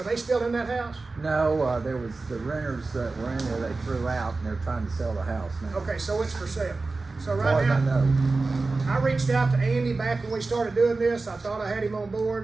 they still in that house? No, there was the renters that were in there, they threw out and they're trying to sell the house now. Okay, so it's for sale. So As far right as I now, know. I reached out to Andy back when we started doing this. I thought I had him on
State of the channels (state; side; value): quieter; left; 3.7 dB